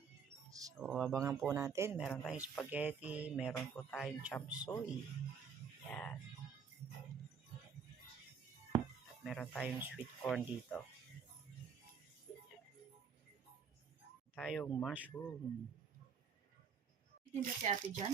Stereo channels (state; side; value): quieter; left; 6.4 dB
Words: So, abangan po natin. Meron tayong spaghetti. Meron po tayong chop suey. Yan. At meron tayong sweet corn dito. Tayong mushroom. Tinda si ate dyan?